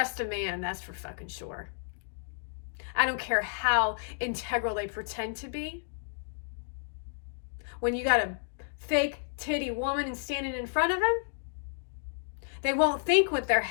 a man, that's for fucking sure. I don't care how integral they pretend to be. When you got a fake titty woman standing in front of them, they won't think with their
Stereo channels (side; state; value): right; silent; digital silence